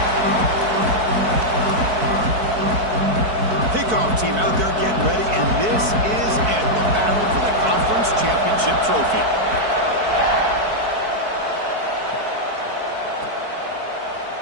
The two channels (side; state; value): left; late; 4.6 ms